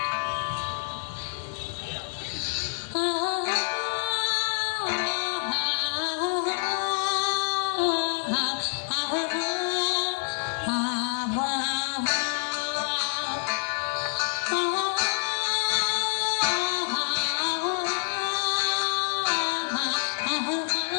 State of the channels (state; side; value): silent; right; 58 dB below the other